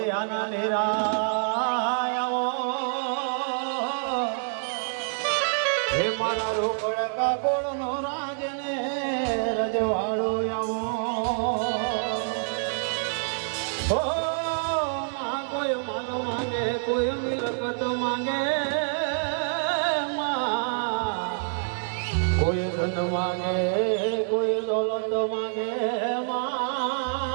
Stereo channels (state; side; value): silent; left; digital silence